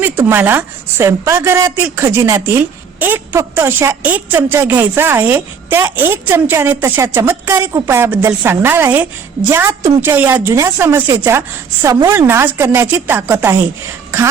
तुम्हाला स्वयंपाकघरातील खजिन्यातील फक्त अशा 1 चमचा घ्यायचा आहे. त्या 1 चमच्याने तशा चमत्कारिक उपायाबद्दल सांगणार आहे, ज्यात तुमच्या या जुन्या समस्येचा समूळ नाश करण्याची ताकद आहे.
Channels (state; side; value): quieter; left; 6.3 dB